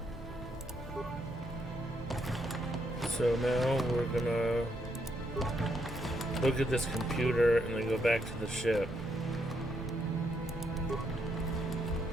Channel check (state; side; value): normal; both; correlation 0.76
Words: So now we're gonna look at this computer and then go back to the ship.